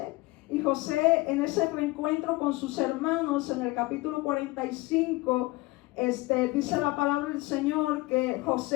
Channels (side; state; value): right; quieter; 21.4 dB